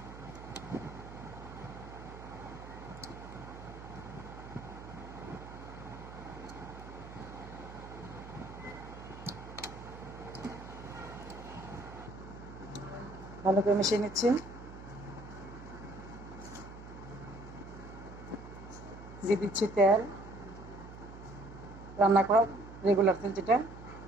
ভালো করে মিশিয়ে নিচ্ছি। দিয়ে দিচ্ছি তেল, রান্না করা রেগুলার তেল যেটা।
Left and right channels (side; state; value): right; noise; hum, 13 dB below the sound